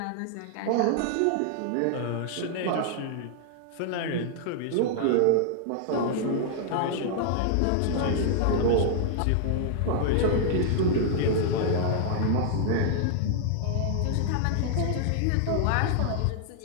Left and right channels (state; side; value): different; both; correlation -0.01